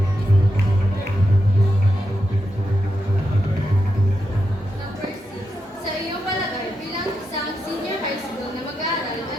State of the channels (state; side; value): normal; both; correlation 0.86